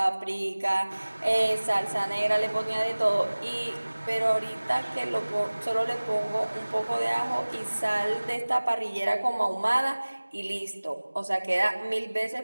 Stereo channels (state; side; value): inverted; both; correlation -1.00